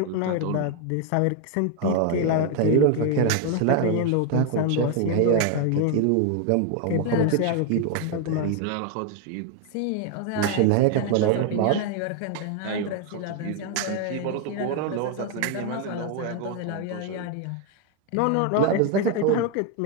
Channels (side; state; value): both; different; correlation 0.01